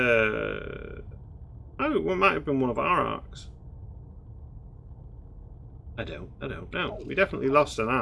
Oh, it might have been one of our arcs. I don't know. We definitely lost an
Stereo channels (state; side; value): identical; both; correlation 1.00